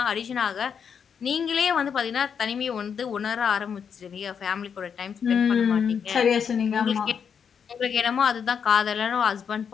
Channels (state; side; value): quieter; right; 7.1 dB